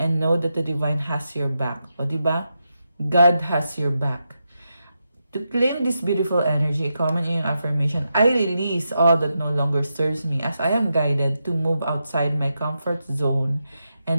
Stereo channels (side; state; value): both; inverted; correlation -0.86